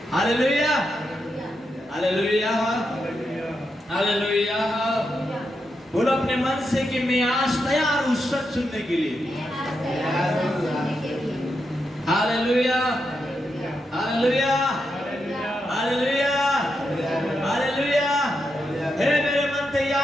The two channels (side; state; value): both; normal; correlation 0.85